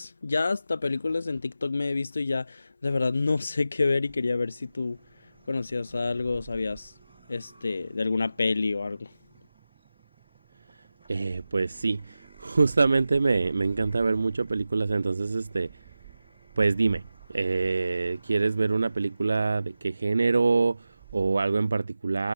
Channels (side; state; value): both; inverted; correlation -0.93